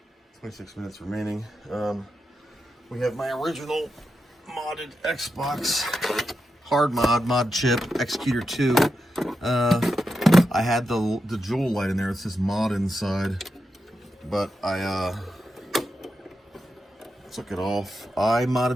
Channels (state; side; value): normal; both; correlation 0.88